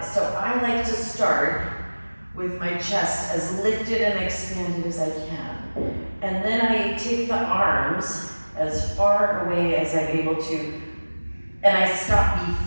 So I like to start with my chest as lifted and expanded as I can. And then I take the arms as far away as I'm able to, and I stop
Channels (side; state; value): both; inverted; correlation -1.00